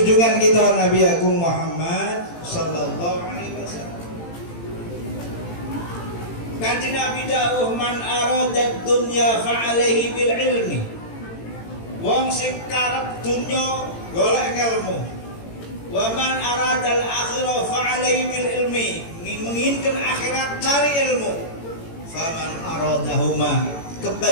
kita Nabi Agung Muhammad sallallahu alaihi wasallam. Kanjeng Nabi dawuh man arada dunya fa alaihi bil ilmi. Wong sing karep dunya golek ilmu. Wa man arada al akhirah fa alaihi bil ilmi. Menginginkan akhirat cari ilmu. Faman aradahuma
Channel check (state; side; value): late; right; 18 ms